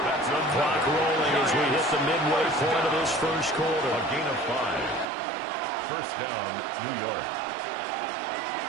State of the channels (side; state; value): left; drops out; at 5.1 s